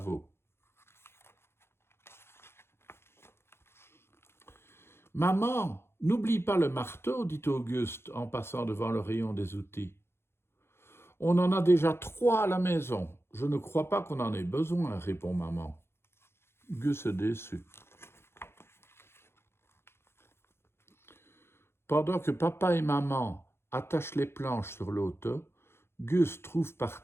Maman, n'oublie pas le marteau, dit Auguste en passant devant le rayon des outils. On en a déjà 3 à la maison. Je ne crois pas qu'on en ait besoin, répond maman. Gus est déçu. Pendant que papa et maman attachent les planches sur l'auto, Gus trouve par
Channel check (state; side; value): late; right; 0.12 ms